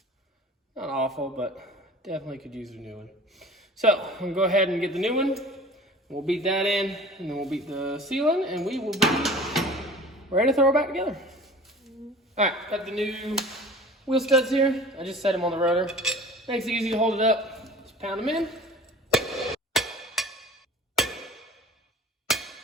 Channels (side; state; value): both; normal; correlation 0.43